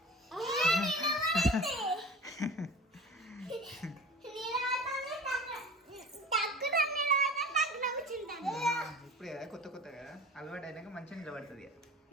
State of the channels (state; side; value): normal; both; correlation 0.37